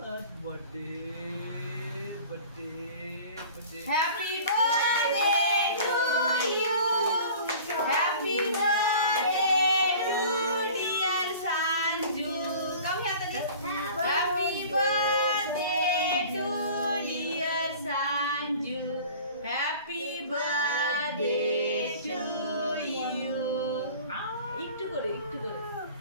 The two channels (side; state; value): both; inverted; correlation -0.43